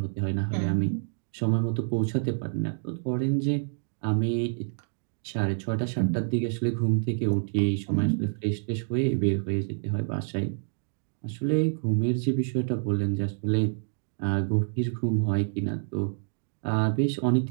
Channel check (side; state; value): left; silent; digital silence